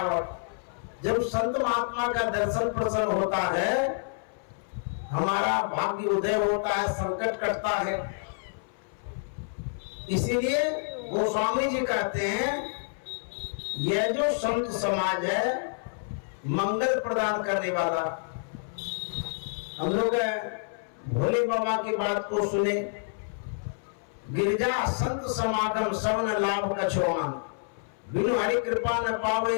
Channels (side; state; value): right; silent; 59 dB below the other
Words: जब संत महात्मा का दर्शन प्रसन्न होता है, हमारा भाग्य उदय होता है, संकट कटता है। इसीलिए गोस्वामी जी कहते हैं यह जो संत समाज है मंगल प्रदान करने वाला। हम लोग भोले बाबा की बात को सुने, गिरजा संत समागम सवन लाभ कछोमान, बिनु हरि कृपा न पावे